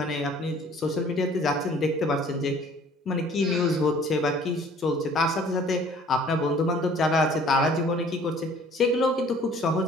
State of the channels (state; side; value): normal; both; correlation 0.53